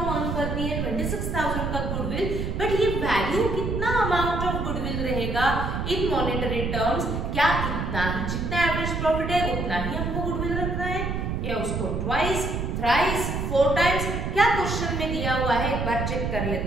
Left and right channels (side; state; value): right; noise; rumble, 2 dB below the sound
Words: अर्न करती है 26,000 का गुडविल, बट ये वैल्यू कितना अमाउंट ऑफ गुडविल रहेगा लिखेगा इन मॉनेटरी टर्म्स, क्या इतना ही, जितना एवरेज प्रॉफिट है उतना ही हमको गुडविल रखना है या उसको ट्वाइस, थ्राइस, 4 टाइम्स, क्या क्वेश्चन में दिया हुआ है एक बार चेक कर